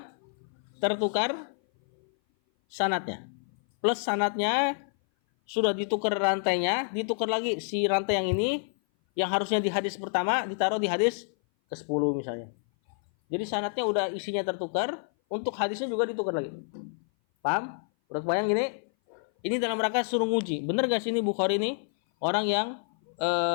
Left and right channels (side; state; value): right; silent; 57 dB below the other